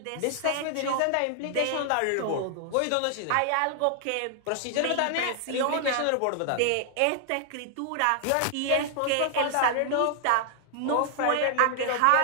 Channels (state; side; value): different; both; correlation 0.00